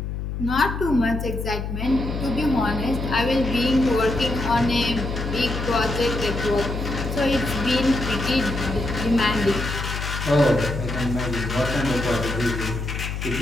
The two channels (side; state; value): left; noise; hum, 4 dB below the sound